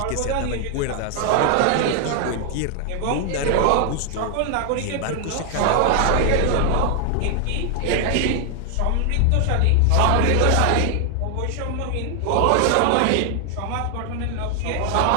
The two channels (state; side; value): different; both; correlation 0.00